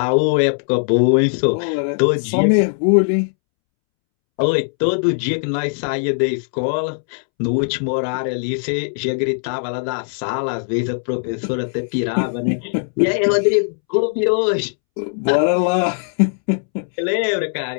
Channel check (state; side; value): silent; right; 66 dB below the other